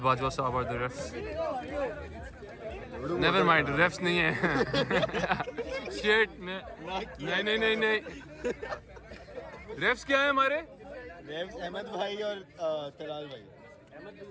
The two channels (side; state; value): both; identical; correlation 1.00